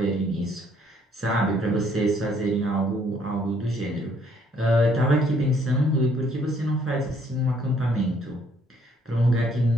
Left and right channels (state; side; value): normal; both; correlation 0.65